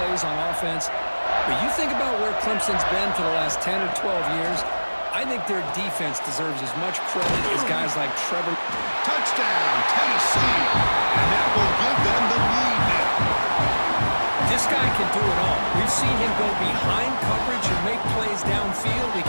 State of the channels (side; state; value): both; inverted; correlation -1.00